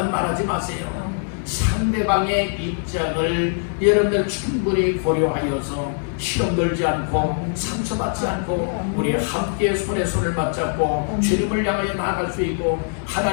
말하지 마세요. 상대방의 입장을 여러분들 충분히 고려하여서 시험 들지 않고 상처받지 않고 우리 함께 손에 손을 맞잡고 주님을 향하여 나아갈 수 있고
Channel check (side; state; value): right; silent; 64 dB below the other